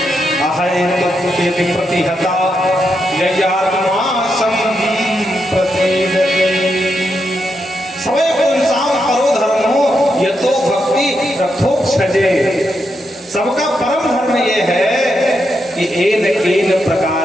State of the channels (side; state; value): both; normal; correlation 0.83